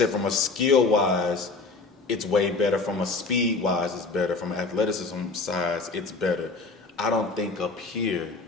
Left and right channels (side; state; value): right; quieter; 3.9 dB